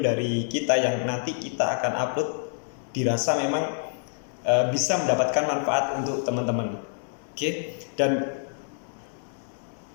kita yang nanti kita akan upload dirasa memang bisa mendapatkan manfaat untuk teman-teman. Oke, dan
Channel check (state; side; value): silent; right; digital silence